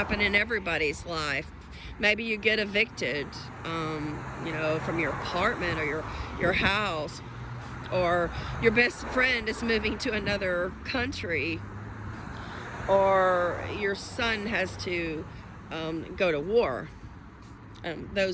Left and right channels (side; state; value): both; identical; correlation 1.00